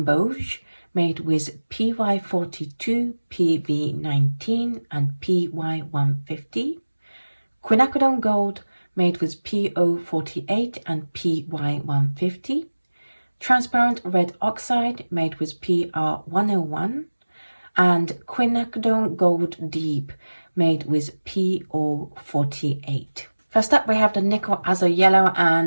made with PY42, PV19 and PY150, Quinacridone Gold made with PO48 and PY150, Transparent Red Oxide made with PR101, and Quinacridone Gold Deep made with PO48. First up, we have the Nickel Azo Yellow,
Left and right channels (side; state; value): both; inverted; correlation -1.00